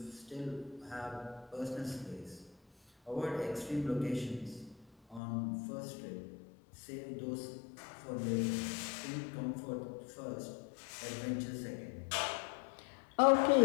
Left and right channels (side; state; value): right; drops out; at 5.2 s